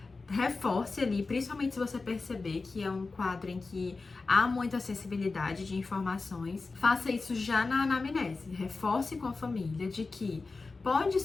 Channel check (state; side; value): quieter; right; 3.9 dB